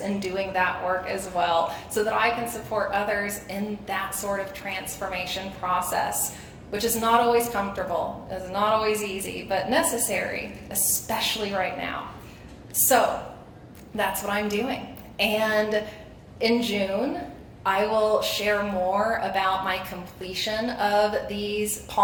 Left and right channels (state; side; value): identical; both; correlation 1.00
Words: in doing that work as well, so that I can support others in that sort of transformation process, which is not always comfortable, is not always easy, but necessary, especially right now. So that's what I'm doing. And in June, I will share more about my completion of these